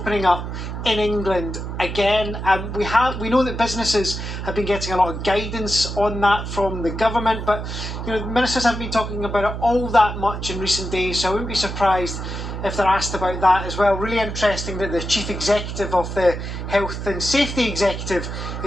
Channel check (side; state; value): right; noise; hum, 6 dB below the sound